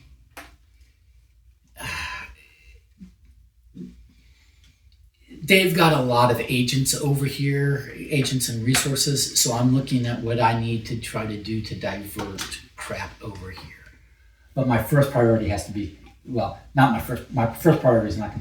They've got a lot of agents over here, agents and resources. So I'm looking at what I need to try to do to divert crap over here. But my first priority has to be, well, not my first priority is not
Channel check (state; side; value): identical; both; correlation 1.00